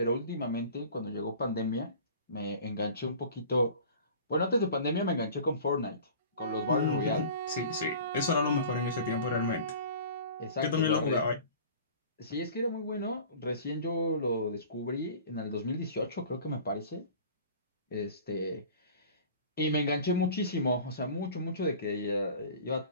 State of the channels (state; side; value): inverted; both; correlation -0.43